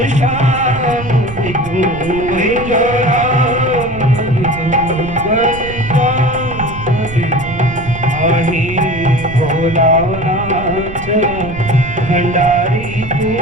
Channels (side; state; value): right; noise; rumble, 11 dB below the sound